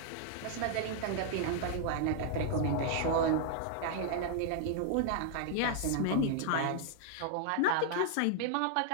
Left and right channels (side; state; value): both; different; correlation -0.01